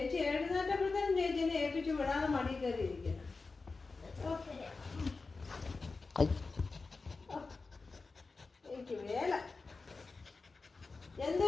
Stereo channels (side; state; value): right; quieter; 4.0 dB